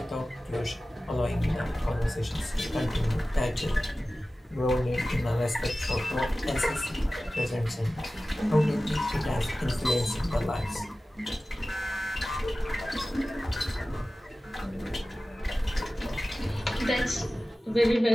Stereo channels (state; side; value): normal; both; correlation 0.96